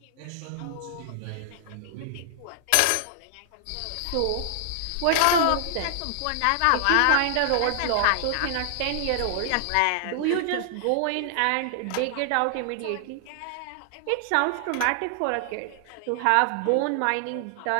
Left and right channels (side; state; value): both; different; correlation -0.01